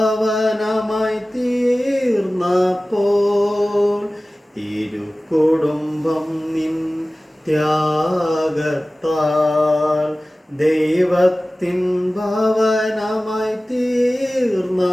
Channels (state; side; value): normal; both; correlation 0.97